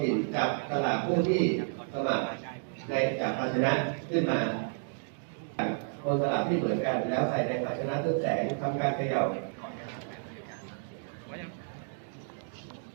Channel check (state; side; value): silent; left; digital silence